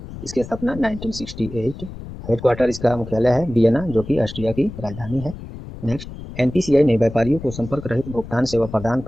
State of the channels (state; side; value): noise; left; rumble, 12 dB below the sound